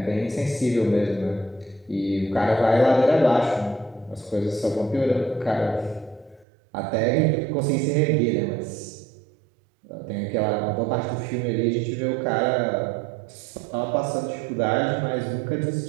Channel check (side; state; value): left; drops out; at 6.5 s